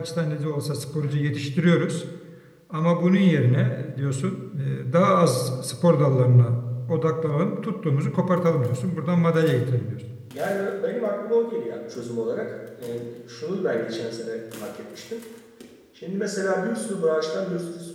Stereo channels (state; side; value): identical; both; correlation 1.00